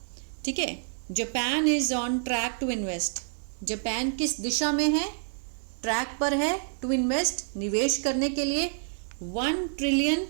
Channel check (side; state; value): left; silent; digital silence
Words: ठीक है। Japan is on track to invest, Japan किस दिशा में है, ट्रैक पर है, टू इन्वेस्ट, निवेश करने के लिए, $1 ट्रिलियन